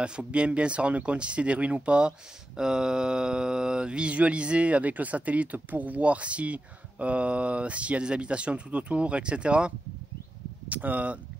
faut bien se rendre compte si c'est des ruines ou pas. Visualiser avec le satellite pour voir s'il y a des habitations tout autour, etc. À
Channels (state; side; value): normal; both; correlation 0.91